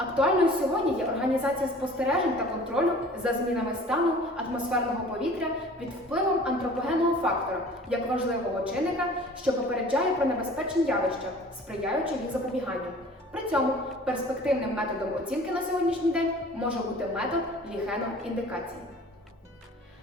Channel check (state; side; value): normal; both; correlation 0.47